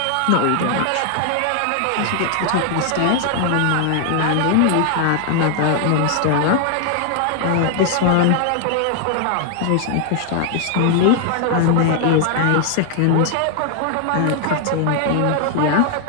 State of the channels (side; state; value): both; different; correlation 0.00